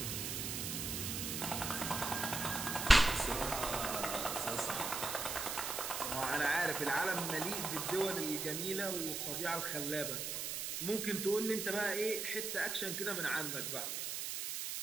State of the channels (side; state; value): right; noise; hiss, 3 dB below the sound